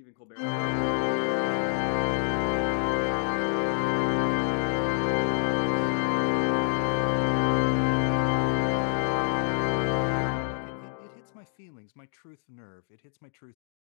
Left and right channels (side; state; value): right; silent; digital silence